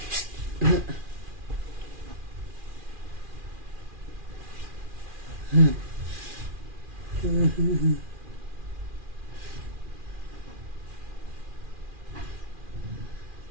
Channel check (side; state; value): left; late; 2.4 ms